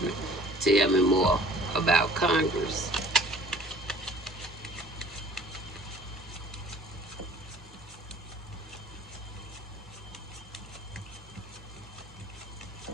Tell me more about Congress.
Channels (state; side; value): normal; both; correlation 0.51